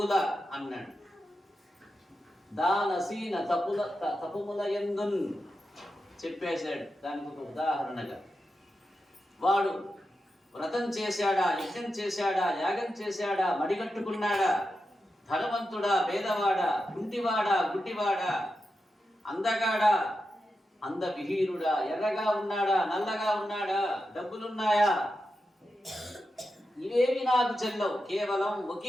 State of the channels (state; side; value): normal; both; correlation 0.89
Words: అన్నాడు. దానసీన తపుముల యందున్ చెప్పేశాడు. దానికి ఒక ఉదాహరణగా వాడు వ్రతం చేశాడా, యజ్ఞం చేశాడా, యాగం చేశాడా, మడిగట్టుకున్నాడా, ధనవంతుడా, పేదవాడా, కుంటివాడా, గుడ్డివాడా, అందగాడా, అందవిహీనుడా, ఎర్రగా ఉన్నాడా, నల్లగా ఉన్నాడా, డబ్బులున్నాయా, ఇవేవి నాకు చెల్లవు. కేవలం